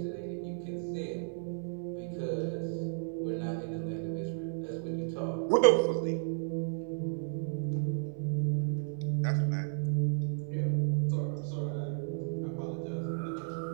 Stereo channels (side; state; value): left; silent; digital silence